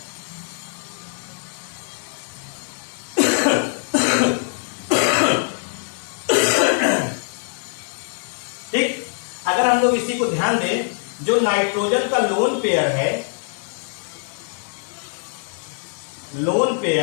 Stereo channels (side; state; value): right; silent; digital silence